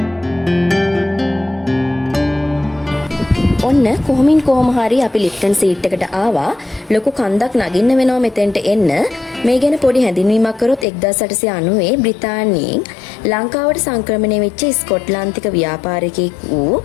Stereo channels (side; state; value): right; drops out; at 10.9 s